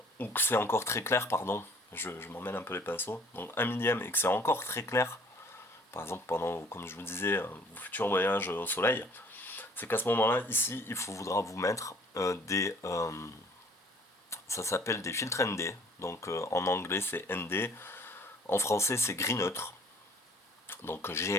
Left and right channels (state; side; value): normal; both; correlation 0.55